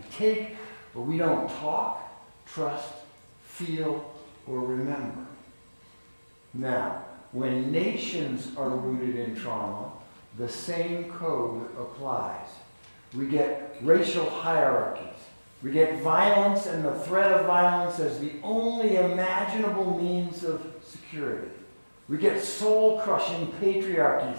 take, but we don't talk, trust, feel, or remember. Now, when nations are rooted in trauma, the same code applies. We get racial hierarchies. We get violence and the threat of violence as the only imaginable means of security. We get soul-crushing patriarchies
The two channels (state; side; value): inverted; both; correlation -1.00